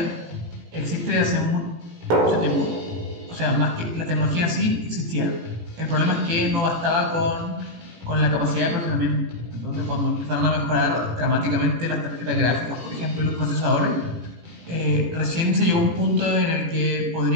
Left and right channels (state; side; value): late; left; 18 ms